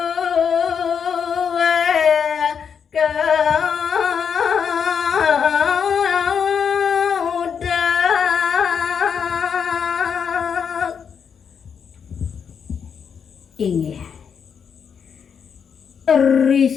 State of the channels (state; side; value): quieter; right; 7.0 dB